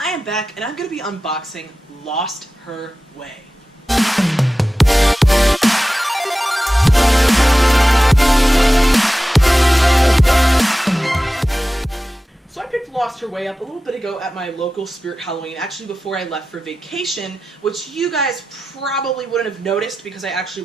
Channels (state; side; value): normal; both; correlation 0.94